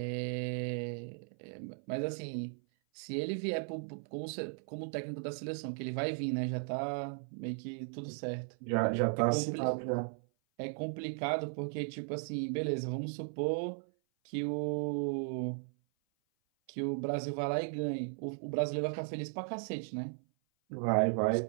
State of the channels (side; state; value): left; silent; 54 dB below the other